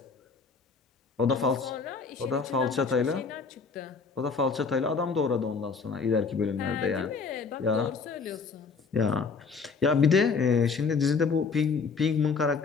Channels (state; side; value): quieter; right; 5.0 dB